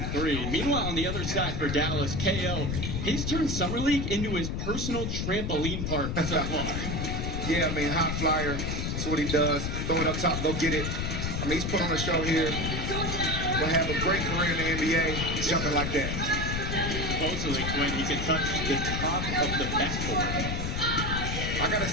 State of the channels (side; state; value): left; noise; rumble, 1 dB below the sound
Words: three. Meanwhile, on the other side for Dallas, KO, he's turned Summer League into his personal trampoline park so far. Yeah, I mean, high flyer. That's what he does. Throw it up top, go get it. I mean, he's put on a show here. Will have a great career in the NBA, jumping like that. Supposedly, Quinn, he can touch the top of the backboard. I gotta